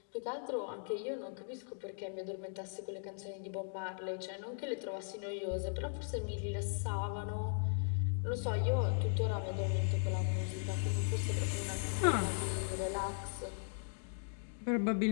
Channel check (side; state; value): right; silent; digital silence